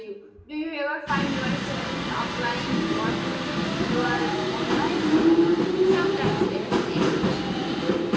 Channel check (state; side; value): identical; both; correlation 1.00